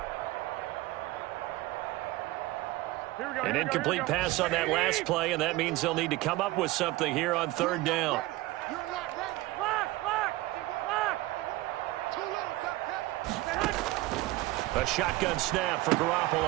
An incomplete pass on that last play, and that means they'll need to come up with something here on third down. A shotgun snap for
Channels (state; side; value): quieter; left; 18.7 dB